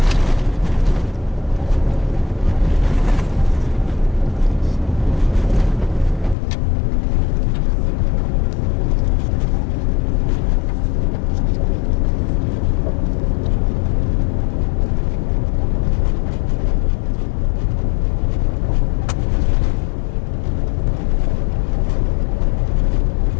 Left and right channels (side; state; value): right; drops out; at 6.4 s